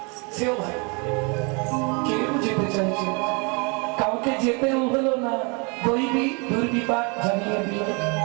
সেও ভাই কেউ যেতে চাইছে, কাউকে যেতেও হলো না, দৈবী দুর্বিপাক জানিয়ে দিল।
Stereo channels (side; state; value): left; quieter; 32.4 dB